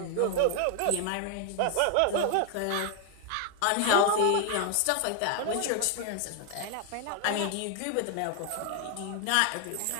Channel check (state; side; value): different; both; correlation 0.00